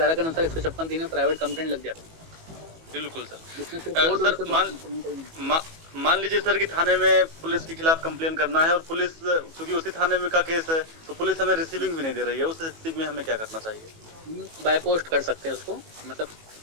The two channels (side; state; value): left; late; 18 ms